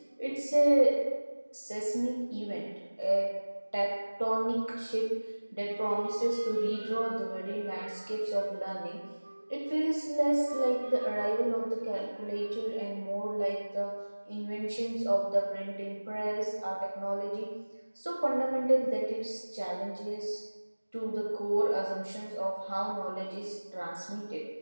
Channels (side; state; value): both; inverted; correlation -1.00